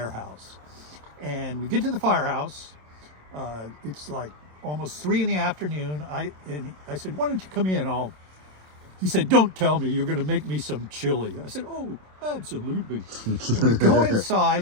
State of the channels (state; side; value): late; left; 27 ms